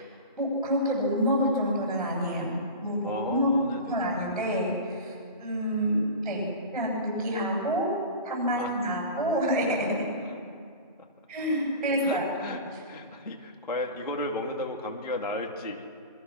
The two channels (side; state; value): both; inverted; correlation -0.31